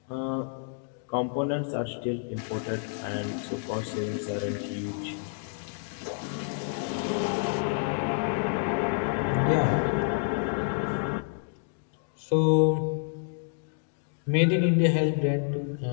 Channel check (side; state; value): right; silent; digital silence